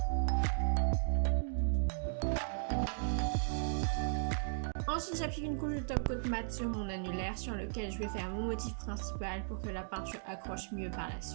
Ensuite, j'applique une couche de top coat mat sur mon annulaire sur lequel je vais faire mon motif principal pour que la peinture accroche mieux par la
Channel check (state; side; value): silent; left; digital silence